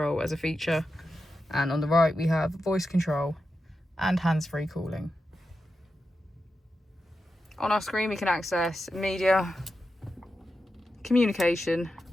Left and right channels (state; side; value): normal; both; correlation 0.89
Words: as a feature, and on the right we have voice control and hands-free calling. On our screen we can access media, communication,